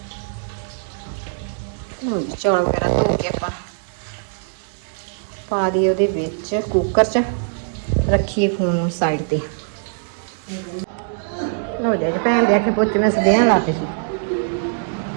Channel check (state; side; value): silent; left; digital silence